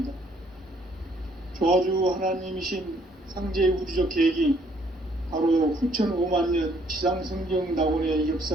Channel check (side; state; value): both; normal; correlation 0.65